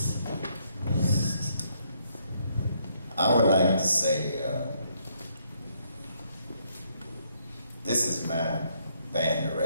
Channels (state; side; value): inverted; both; correlation -0.72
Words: I would like to say, this is my band